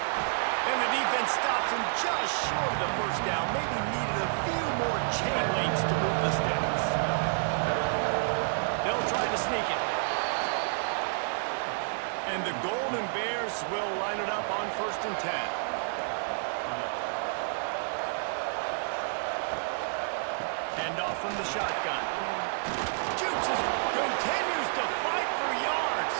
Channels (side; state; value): left; silent; digital silence